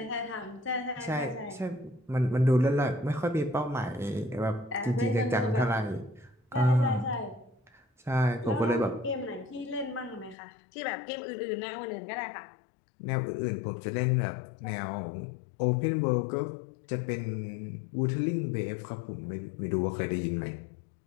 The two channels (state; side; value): drops out; right; at 10.4 s